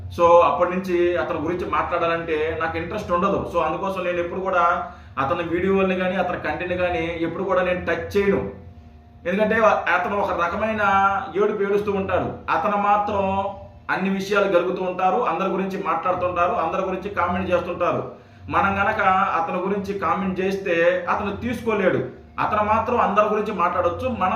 సో అప్పటి నుంచి అతని గురించి మాట్లాడాలంటే నాకు ఇంట్రెస్ట్ ఉండదు. సో అందుకోసం నేను ఎప్పుడు కూడా అతని వీడియోని కానీ అతని కంటెంట్ కానీ ఎప్పుడు కూడా నేను టచ్ చేయను. ఎందుకంటే అతను ఒక రకమైన ఏడుస్తూ ఉంటాడు. అతను మాత్రం అన్ని విషయాలు గలుగుతూ ఉంటారు, అందరి గురించి మాట్లాడుతుంటారు, అందరి గురించి కామెంట్ చేస్తుంటారు. మనం గనక అతని గురించి కామెంట్ చేస్తే అతను తీసుకోలేడు. అతను మాత్రం అందరి గురించి మాట్లాడవచ్చు,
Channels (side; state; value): both; identical; correlation 1.00